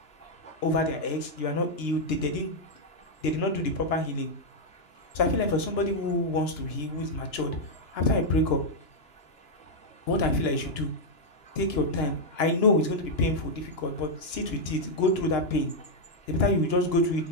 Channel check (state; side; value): late; right; 2.9 ms